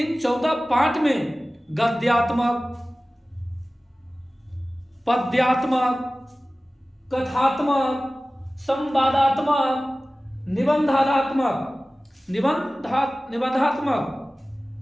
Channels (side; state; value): both; normal; correlation 0.97